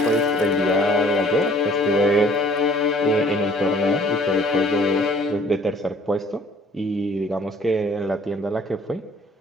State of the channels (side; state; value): both; normal; correlation 0.55